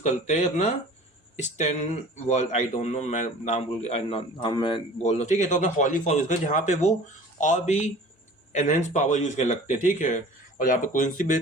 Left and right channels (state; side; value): normal; both; correlation 0.44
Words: करते हैं, अपना stand world, I don't know, मैं नाम मैं बोल रहा हूँ, ठीक है। तो अपना हॉली फॉर्म यूज़ करते, जहाँ पे वो और भी एनहेंस पावर यूज़ करने लगते हैं, ठीक है। और यहाँ पे क्विंसी भी